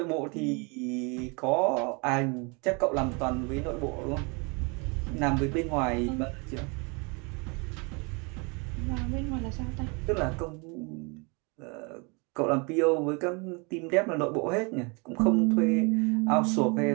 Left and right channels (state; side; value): quieter; left; 31.1 dB